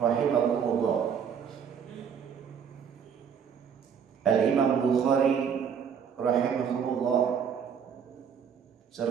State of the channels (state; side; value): quieter; left; 7.4 dB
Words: Al-Imam Bukhari rahimahumullah